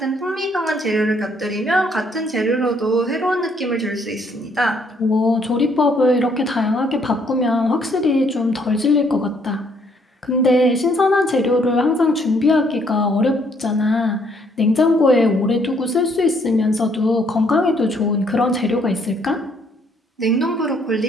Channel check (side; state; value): both; normal; correlation 0.67